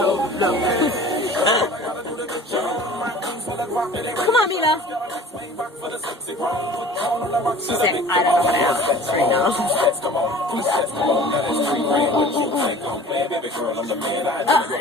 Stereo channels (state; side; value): normal; both; correlation 0.44